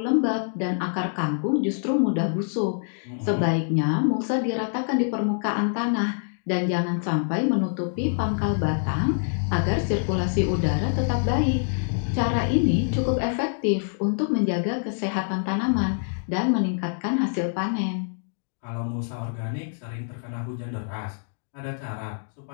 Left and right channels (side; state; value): right; silent; digital silence